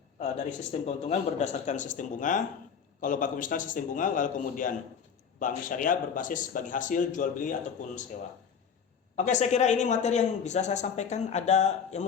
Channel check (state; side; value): quieter; right; 6.9 dB